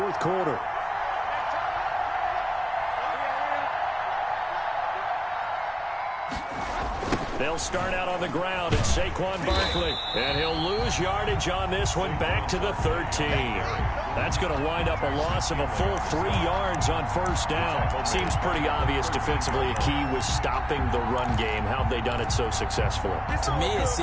quarter. They'll start out on the ground. It's Saquon Barkley. And he'll lose yardage on this one back to the 13. That's going to wind up a loss of a full 3 yards on first down. Seems pretty obvious defensively a key was stopping the run game. How have they done it so successfully? To me, it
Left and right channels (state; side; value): identical; both; correlation 1.00